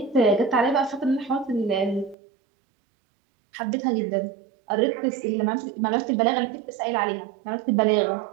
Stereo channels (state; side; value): drops out; left; at 2.1 s